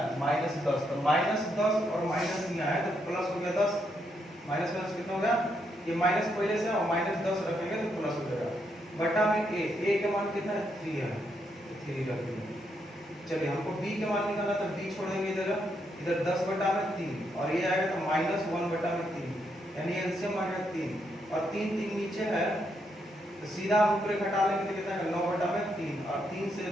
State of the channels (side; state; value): both; normal; correlation 0.78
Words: -10, तो -10 और माइनस यहाँ है तो प्लस हो गया 10, माइनस माइनस कितना हो गया, ये माइनस पहले से और -10 रखेंगे तो प्लस हो जाएगा, बटा में a के मान कितना है 3 है, 3 रख देंगे। चलिए हमको b के मान निकालना, तो b छोड़ देंगे इधर 10/3 और ये आएगा तो -1/3, यानी एलसीएम आ गया 3 और 3 3 नीचे है, तो सीधा ऊपर घटा लेंगे तो कितना है 9/3 और 3 से